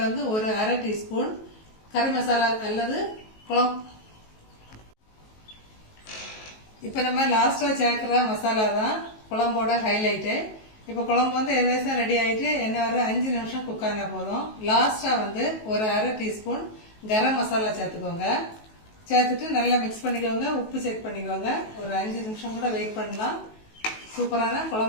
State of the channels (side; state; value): right; late; 19 ms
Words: வந்து ஒரு 1/2 டீஸ்பூன் கறி மசாலா அல்லது குழம்பு. இப்போ நம்ம லாஸ்டா சேர்க்கிற மசாலா தான் குழம்போட ஹைலைட்டு. இப்போ குழம்பு வந்து எதேசம் ரெடி ஆகிட்டு என்ன ஒரு 5 நிமிஷம் குக் ஆனா போதும். லாஸ்டா வந்து ஒரு 1/2 டீஸ்பூன் கரம் மசாலா சேர்த்துக்கோங்க. சேர்த்துட்டு நல்லா மிக்ஸ் பண்ணிக்கோங்க. உப்பு செக் பண்ணிக்கோங்க. ஒரு 5 நிமிஷம் கூட வெயிட் பண்ணலாம். சூப்பரான